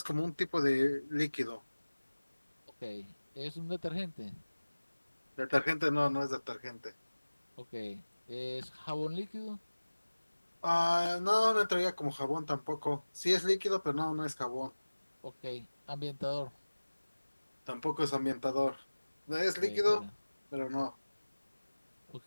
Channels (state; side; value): inverted; both; correlation -1.00